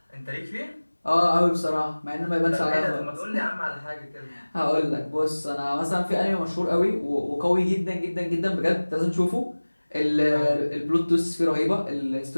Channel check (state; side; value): inverted; both; correlation -1.00